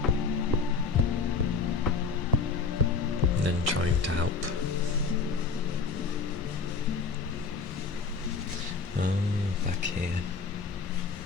And then trying to help. Oh, back here.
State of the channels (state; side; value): quieter; right; 5.1 dB